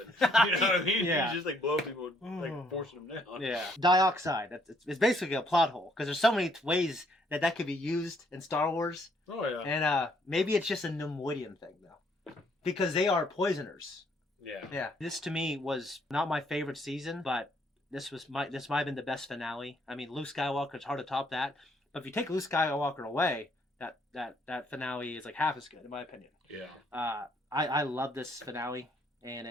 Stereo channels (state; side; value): normal; both; correlation 0.68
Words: You know what I mean? Yeah. He's just like blowing people, like forcing them down. Yeah, dioxide. It's basically a plot hole, because there's so many ways that could be used in Star Wars. Oh yeah. And maybe it's just a Nemoidian thing though, because they are poisoners. Yeah. Yeah. This to me was not my favorite season, but this might have been the best finale. I mean, Luke Skywalker, it's hard to top that. But if you take Luke Skywalker away, that finale is like half as good, in my opinion. Yeah. I love this finale,